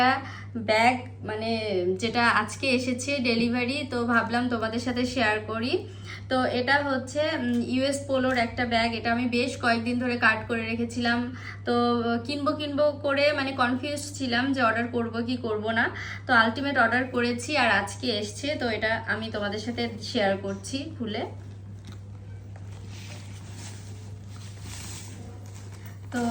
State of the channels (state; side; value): identical; both; correlation 1.00